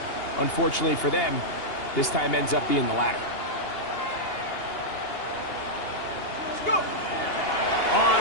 unfortunately for them, this time ends up being the latter.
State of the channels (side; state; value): right; late; 2.8 ms